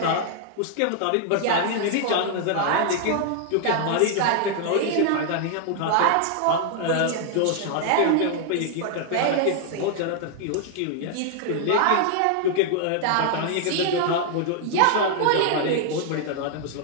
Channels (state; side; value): different; both; correlation 0.00